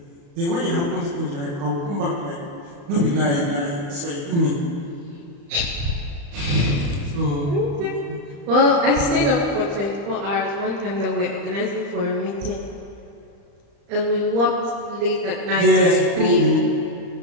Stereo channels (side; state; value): left; late; 35 ms